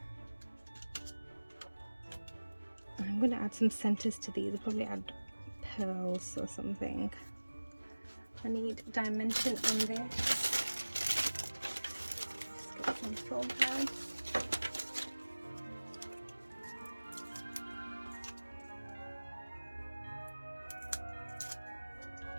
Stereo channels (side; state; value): both; inverted; correlation -1.00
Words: And I'm going to add some centers to these. I'll probably add pearls or something. I need dimension on this. Just get some foam pads.